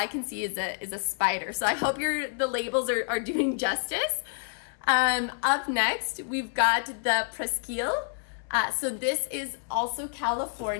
can see is a spider. So I hope the labels are doing justice. Up next, we've got the Presqu'île. So this is also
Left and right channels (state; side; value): silent; right; 59 dB below the other